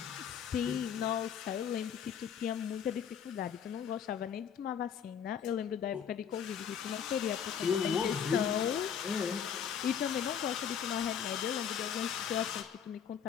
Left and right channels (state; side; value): quieter; right; 8.0 dB